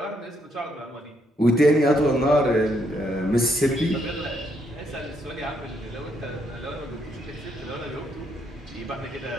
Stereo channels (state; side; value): normal; both; correlation 0.74